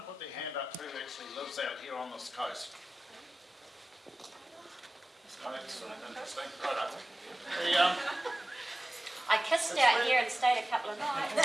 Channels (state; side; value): normal; both; correlation 0.96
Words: put their hand up who actually lives out here on this coast? Oh, that's interesting. Right up. I kissed out here and stayed a couple of nights. No